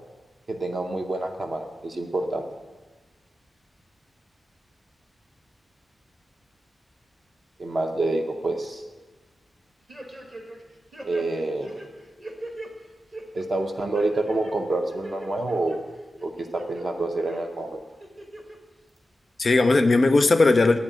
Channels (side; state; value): both; normal; correlation 0.92